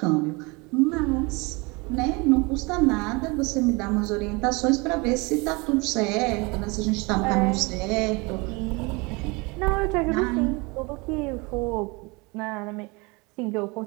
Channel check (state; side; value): quieter; left; 27.1 dB